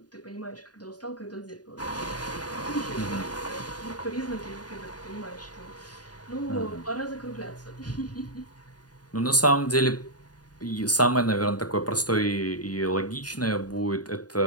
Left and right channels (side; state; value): right; late; 0.69 ms